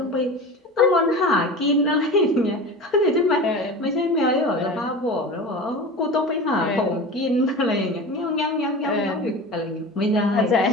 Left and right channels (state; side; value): normal; both; correlation 0.32